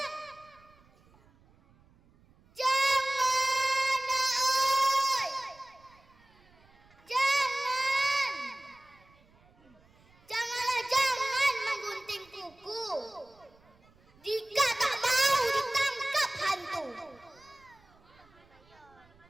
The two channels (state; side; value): noise; right; rumble, 30 dB below the sound